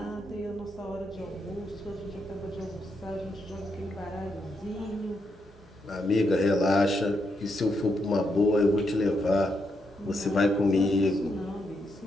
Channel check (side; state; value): both; normal; correlation 0.80